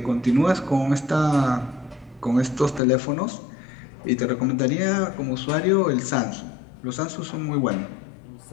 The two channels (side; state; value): right; drops out; at 2.8 s